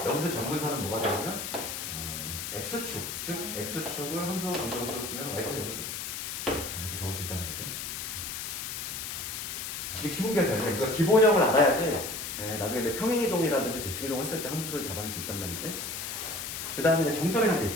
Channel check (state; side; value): noise; left; hiss, 5 dB below the sound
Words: 점근선은 뭐가 되냐면 x축, 즉 x축을 함수 방정을 써쓰면 y가 0이지. 이렇게 적을 수 있다는 거지. 이게 기본기가 돼요. 그러니까 기본형을 알아야지 나중에 내 평행이동이라든지 대칭이동 했을 때 함수를 잡아낼 수 있단 말이지. 그 다음에 정점이라는 게